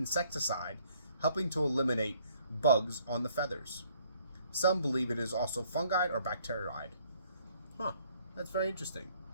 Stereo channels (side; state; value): both; inverted; correlation -0.63